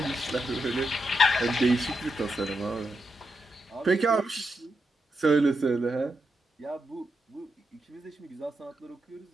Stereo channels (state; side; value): normal; both; correlation 0.84